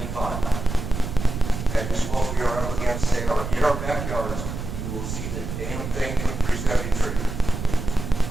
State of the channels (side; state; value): right; noise; rumble, 6 dB below the sound